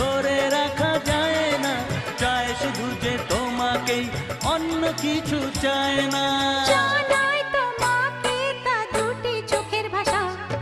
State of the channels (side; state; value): both; identical; correlation 1.00